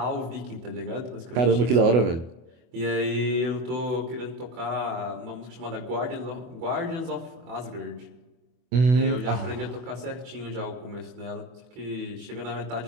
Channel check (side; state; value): left; late; 24 ms